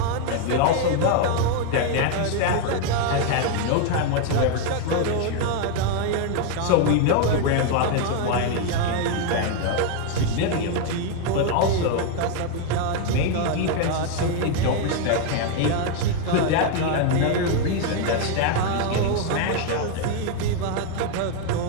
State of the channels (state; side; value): different; both; correlation 0.01